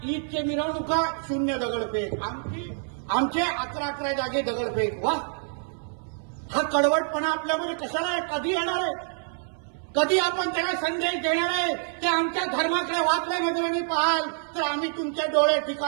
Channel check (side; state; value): left; silent; 60 dB below the other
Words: ईदचे मिरवणुका 0 दगडफेक, आमचे 11 जागे दगडफेक. वा, हा कडवटपणा आपल्यामध्ये कशाला आहे? कधी येणार आहे? कधी आपण त्याला संदेश देणार आहे? ते आमच्या धर्माकडे वाचल्या नजरेने पाहाल तर आम्ही तुमचे डोळे